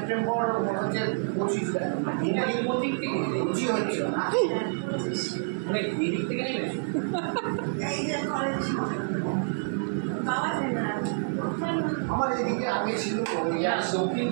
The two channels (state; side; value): silent; left; digital silence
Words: 25 হচ্ছে না, আমার এদিকে আগে ছিল দক্ষিণ